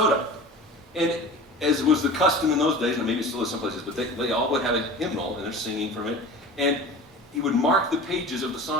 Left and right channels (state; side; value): normal; both; correlation 0.37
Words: And as was the custom in those days, and maybe it still is some places, but they all would have a hymnal, and they're singing from it. And he would mark the pages of the